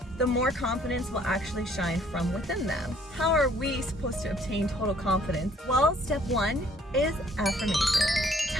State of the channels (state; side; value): normal; both; correlation 0.61